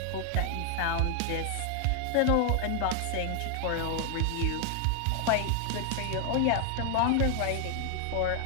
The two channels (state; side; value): different; both; correlation 0.00